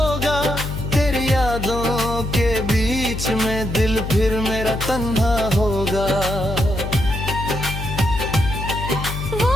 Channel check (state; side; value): noise; left; hum, 6 dB below the sound